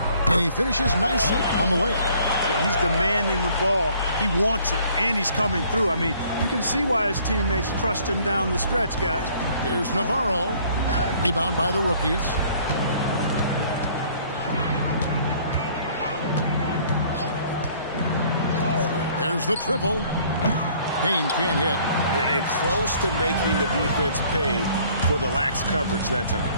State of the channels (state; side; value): inverted; both; correlation -0.58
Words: And he finishes nicely on the layup. Well, he's demanding the ball. He wants it, and he's coming through. I mean, you can see why his teammates trust him down the stretch, guys. Here's Navarro. Rebound by the rookies. There's the triple. Payne can't hit. And close to making the defense pay for the lax coverage that